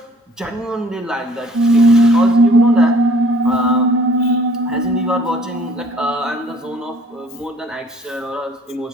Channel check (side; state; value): both; normal; correlation 0.55